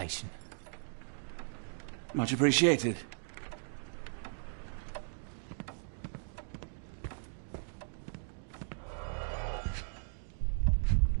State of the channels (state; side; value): silent; left; digital silence